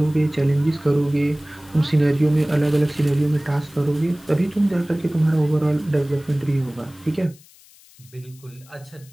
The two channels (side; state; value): left; noise; hiss, 26 dB below the sound